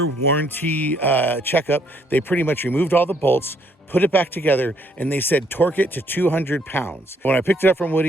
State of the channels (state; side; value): normal; both; correlation 0.68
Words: warranty checkup, they pretty much removed all the bolts, put it back together, and they said torque it to 200 pounds. When I picked it up from